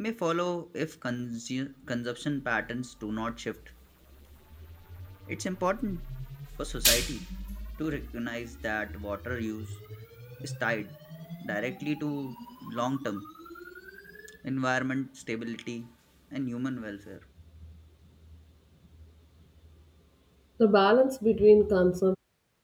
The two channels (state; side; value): identical; both; correlation 1.00